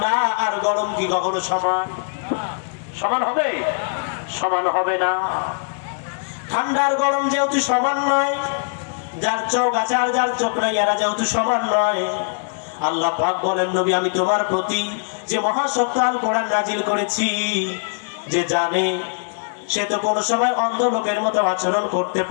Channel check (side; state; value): right; silent; digital silence